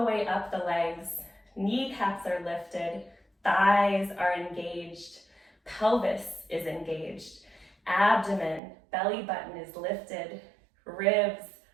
way up the legs. Kneecaps are lifted, thighs are engaged, pelvis is engaged, abdomen, belly button is lifted, ribs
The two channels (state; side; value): drops out; left; at 8.6 s